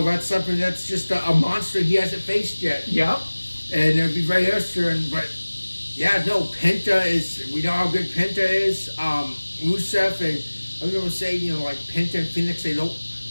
That's something that's just a monster he hasn't faced yet. Yep. And it'll be very interesting, but... Yeah, no, Penta we know how good Penta is. Rusev, and I'm going to say, like Penta and Phoenix, they don't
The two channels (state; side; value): inverted; both; correlation -1.00